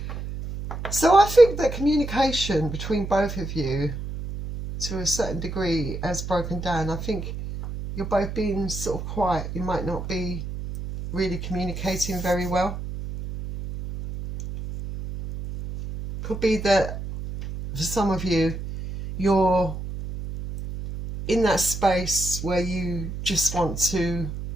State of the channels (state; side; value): noise; right; hum, 7 dB below the sound